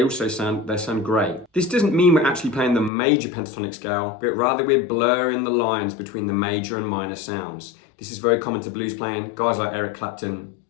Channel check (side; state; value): right; drops out; at 2.9 s